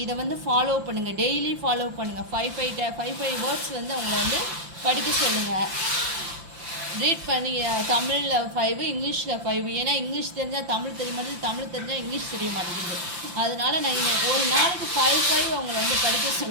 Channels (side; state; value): left; late; 5.9 ms